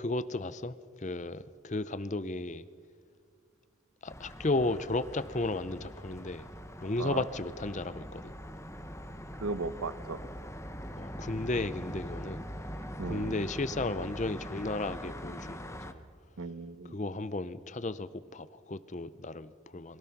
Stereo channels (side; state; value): both; normal; correlation 0.44